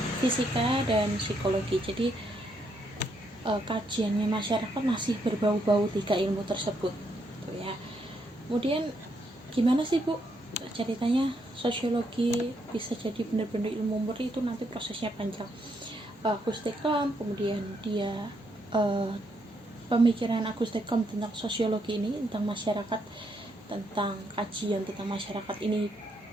fisika dan psikologi. Jadi kajiannya masyarakat masih berbau-bau tiga ilmu tersebut gitu ya. Kemudian gimana sih Bu ceritanya sosiologi bisa jadi benar-benar ilmu murni? Itu nanti prosesnya panjang. Auguste Comte, kemudian dia pemikiran Auguste Comte tentang sosiologi ini, tentang masyarakat, tentang kajian tentang masyarakat ini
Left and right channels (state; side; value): normal; both; correlation 0.76